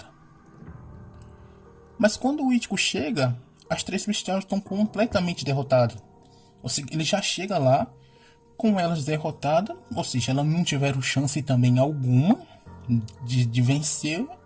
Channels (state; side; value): identical; both; correlation 1.00